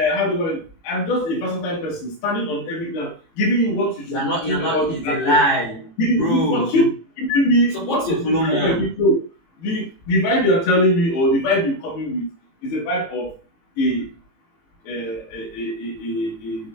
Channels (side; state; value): right; late; 18 ms